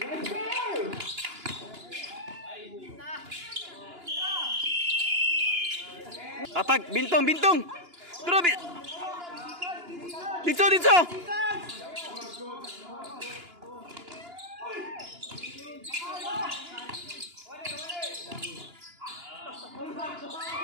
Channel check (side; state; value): left; late; 2.9 ms